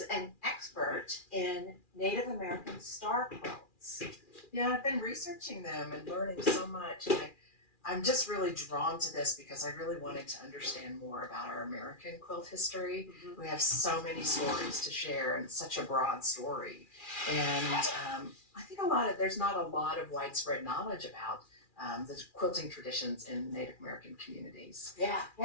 an expert in Native American star quilts. Yeah, I've been researching them and learning so much. And I'm just really drawn to this because I really wanted to understand more about our American quilt history. We have so many stories to share and such a broad story. And I think there's not a lot of widespread knowledge about the quilting traditions in Native American communities. Yeah.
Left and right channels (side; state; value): right; late; 2.4 ms